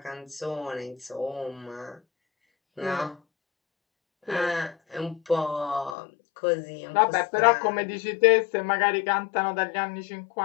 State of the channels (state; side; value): drops out; right; at 6.0 s